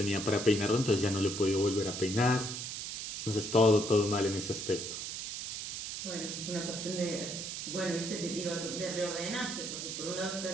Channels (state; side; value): noise; right; hiss, 5 dB below the sound